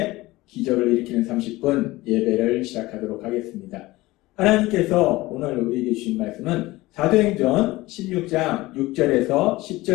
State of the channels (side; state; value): right; quieter; 19.4 dB